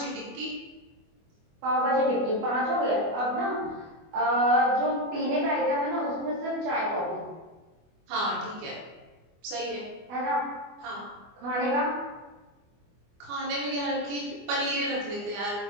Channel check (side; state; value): left; late; 24 ms